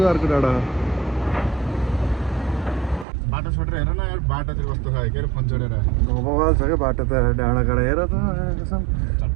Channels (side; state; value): left; drops out; at 3.1 s